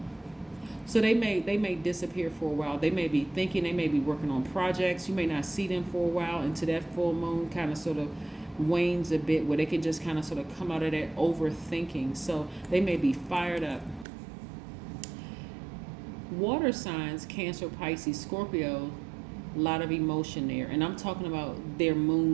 So they may disappear for a while. They may be thinking, they may be working on projects. You may not see them for a while until that full moon kind of sort of wanes a bit, where they can just kind of sort of come out of that overthinking. So they may be fired up Water signs, Cancer, Pisces, Scorpio, a lot of emotion there. And I'm talking about their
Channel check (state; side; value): drops out; left; at 14.1 s